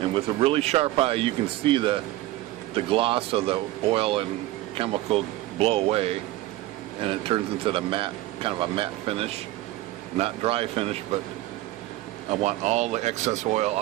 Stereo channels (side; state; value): left; quieter; 16.7 dB